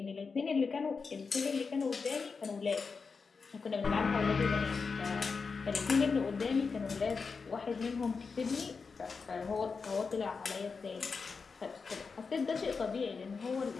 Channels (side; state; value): right; quieter; 5.0 dB